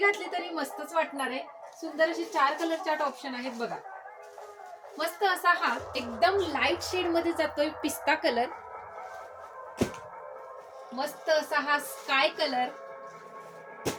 तरी मस्तच वाटणार आहे। सुंदर अशी 4 कलर चार्ट ऑप्शन आहेत बघा। मस्त असा हा एकदम लाईट शेड मध्ये जातोय पिस्ता कलर, मस्त असा हा स्काय कलर,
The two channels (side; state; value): both; identical; correlation 1.00